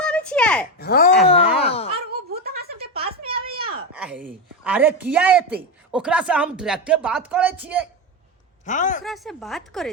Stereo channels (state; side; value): normal; both; correlation 0.13